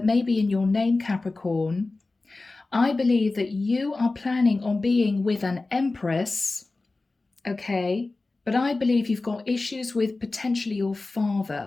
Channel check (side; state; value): right; quieter; 3.4 dB